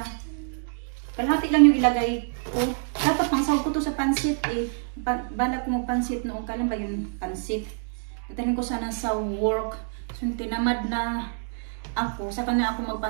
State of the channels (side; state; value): left; silent; digital silence